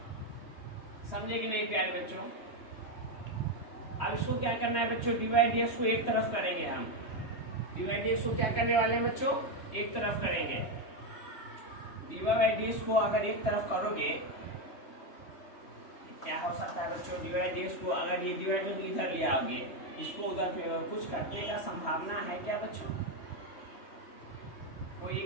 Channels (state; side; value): late; right; 3.2 ms